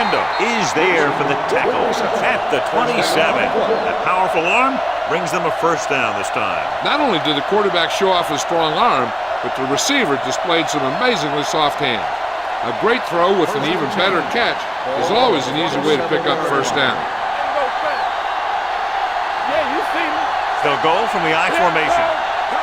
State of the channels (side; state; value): both; identical; correlation 1.00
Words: is there for the tackle at the 27. That powerful arm brings them a first down this time. Not only did the quarterback show off his strong arm, but the receiver displayed some amazingly soft hands. A great throw with an even better catch is always an easy way to pick up first down. Yeah, you see me. They'll go from the I formation.